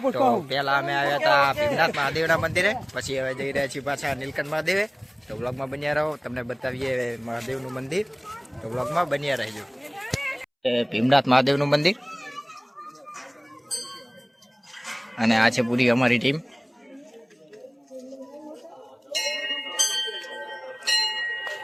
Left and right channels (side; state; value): both; identical; correlation 1.00